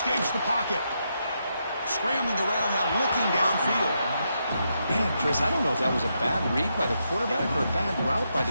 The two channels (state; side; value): inverted; both; correlation -0.82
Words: the pocket. Scrambling around now, looking downfield. Man, Chris, I don't know if that was a bad read by the quarterback or a bad route by